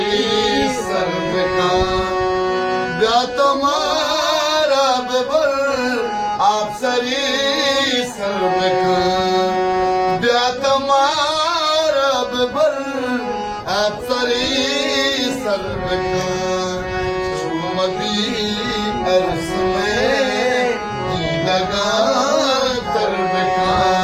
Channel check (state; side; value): identical; both; correlation 1.00